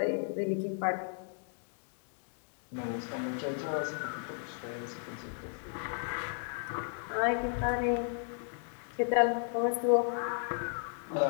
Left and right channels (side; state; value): right; silent; 55 dB below the other